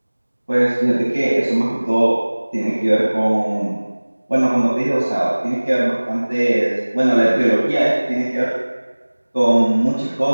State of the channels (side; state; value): both; inverted; correlation -1.00